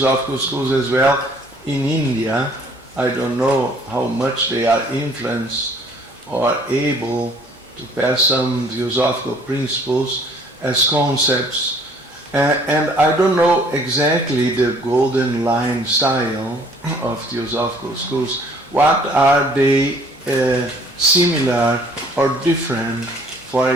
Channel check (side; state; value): both; normal; correlation 0.57